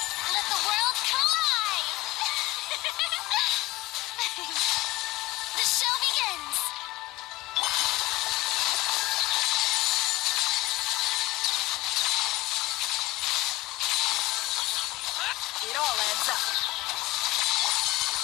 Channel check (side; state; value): right; quieter; 19.7 dB